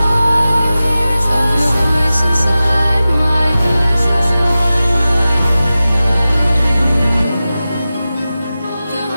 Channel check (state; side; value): inverted; both; correlation -0.95